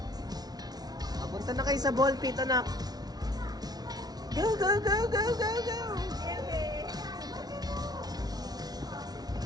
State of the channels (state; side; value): late; left; 0.19 ms